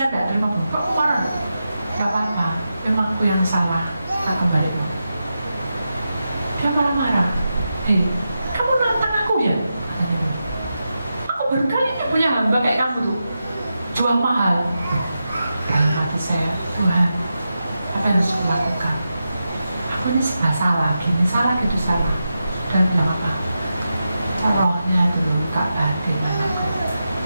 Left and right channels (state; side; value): inverted; both; correlation -0.89